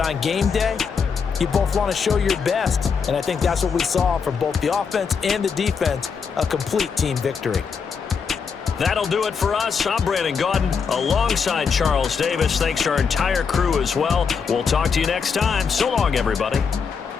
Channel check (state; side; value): quieter; right; 5.9 dB